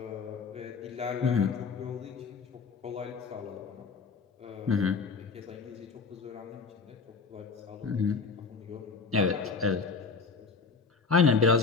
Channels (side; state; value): right; quieter; 4.9 dB